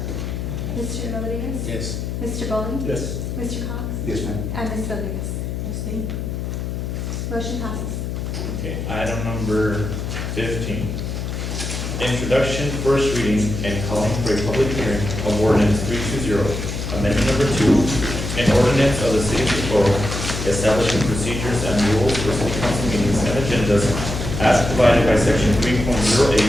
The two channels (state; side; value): noise; left; hum, 4 dB below the sound